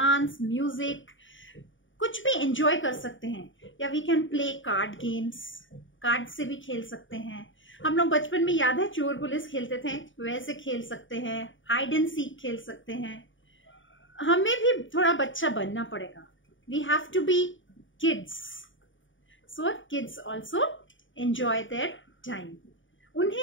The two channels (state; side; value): late; right; 0.56 ms